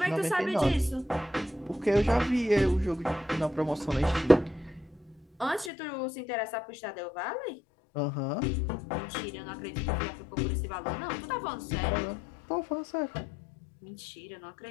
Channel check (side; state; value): right; drops out; at 5.7 s